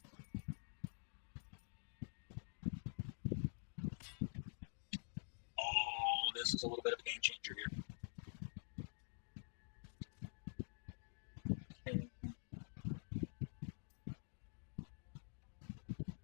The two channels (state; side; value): silent; right; digital silence